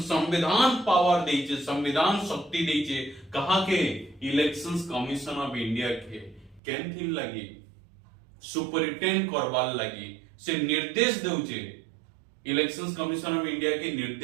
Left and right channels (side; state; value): left; drops out; at 6.6 s